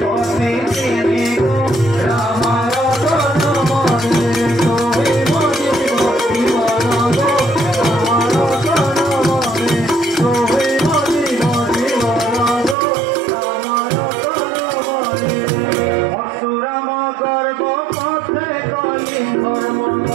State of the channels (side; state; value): left; drops out; at 12.8 s